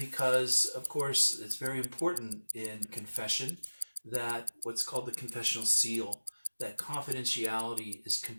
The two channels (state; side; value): inverted; both; correlation -1.00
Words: of course, it's very important in confession that what's called the confessional seal, that confidentiality is